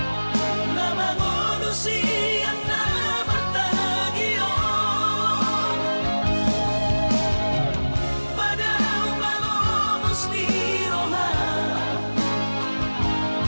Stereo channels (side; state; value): both; inverted; correlation -1.00